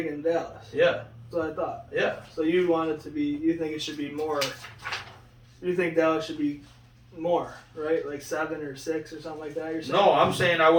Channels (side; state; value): both; identical; correlation 1.00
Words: Dallas? yeah, That's what I thought. yeah. So you want it to be? You think it should be more? You think Dallas should be more, right? Like 7 or 6 or something like that. You're saying? No, I'm saying I